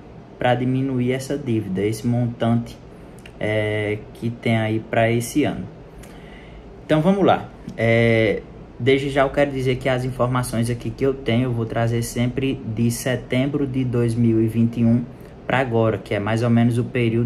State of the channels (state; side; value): identical; both; correlation 1.00